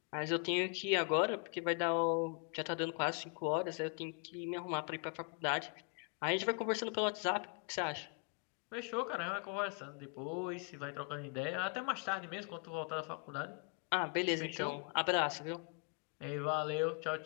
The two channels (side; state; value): right; quieter; 36.3 dB